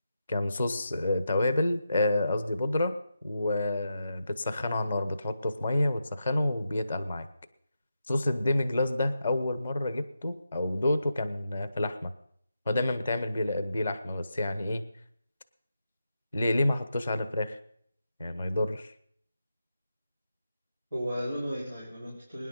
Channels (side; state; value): both; inverted; correlation -0.87